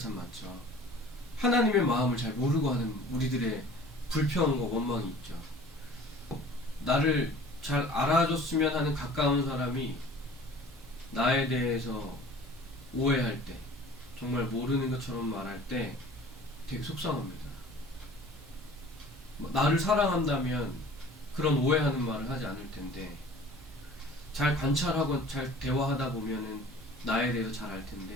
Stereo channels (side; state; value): both; normal; correlation 0.46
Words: 많죠. 하나님의 마음을 잘 모르고 하는 우리들의 불평과 원망이 있죠. 나를 잘 알아줬으면 하는 가까운 사람이 나에 대해서 오해할 때, 정말 모르는 것처럼 말할 때 되게 속상합니다. 나를 사랑한다면 그런 오해하는 말을 하지 않을 텐데, 잘 관찰하고 잘 대화하다 보면은 나에 대해서 잘 알